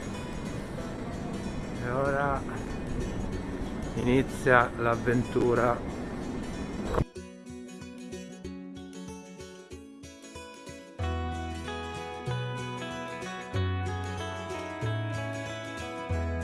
e ora inizia l'avventura.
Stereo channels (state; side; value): identical; both; correlation 1.00